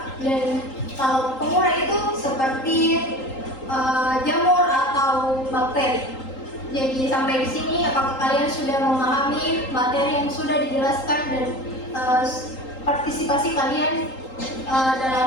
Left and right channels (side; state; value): right; late; 3.8 ms